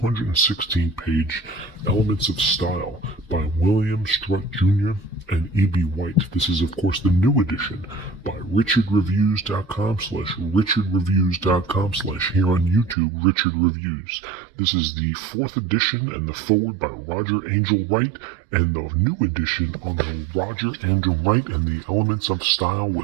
Elements of Style by William Strunk Jr. and E.B. White. This is, of course, the new edition by richardreviews.com/richardreviews.com/ here on YouTube, Richard Reviews. This is the 4th edition and the forward by Roger Angel Wright, and the new edition on the Roger Angel Wright and the Elements of Style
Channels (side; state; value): left; drops out; at 13.0 s